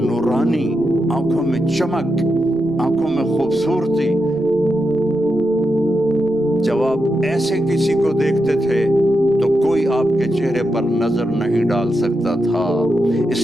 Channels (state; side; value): noise; right; rumble, 27 dB below the sound